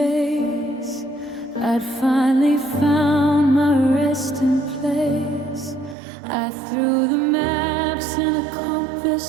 I'd finally found my resting place. I threw the maps and the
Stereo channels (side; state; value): left; drops out; at 6.0 s